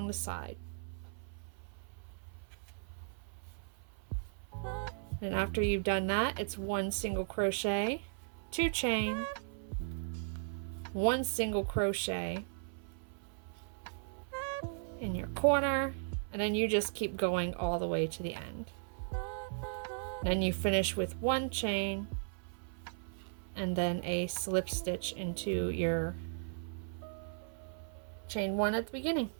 the side. And after you've done that, it's 1 single crochet, 2 chain, 1 single crochet in your corner, and then you just keep going all the way to the end. Then you finish with 1 chain and then a slip stitch into your chain 1 at the beginning.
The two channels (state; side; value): silent; left; 53 dB below the other